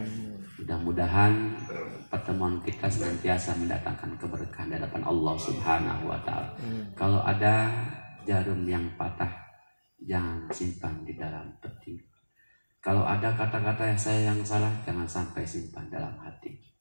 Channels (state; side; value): inverted; both; correlation -1.00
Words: Mudah-mudahan pertemuan kita senantiasa mendatangkan keberkahan di hadapan Allah Subhanahu wa Ta'ala. Kalau ada jarum yang patah, jangan simpan di dalam peti. Kalau ada kata-kata yang salah, jangan sampai simpan dalam hati.